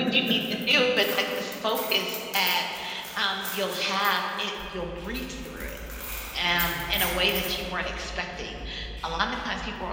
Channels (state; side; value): identical; both; correlation 1.00